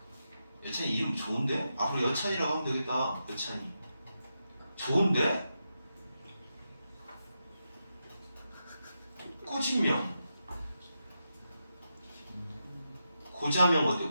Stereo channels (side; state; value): both; inverted; correlation -0.87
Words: 여찬이 이름 좋은데? 앞으로 여찬이라고 하면 되겠다. 여찬이 좋은데? 꾸진명 고자명 어때?